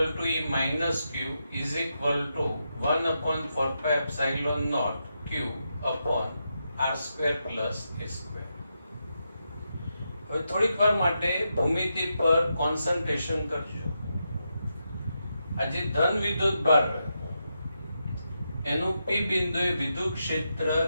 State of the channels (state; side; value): inverted; both; correlation -0.85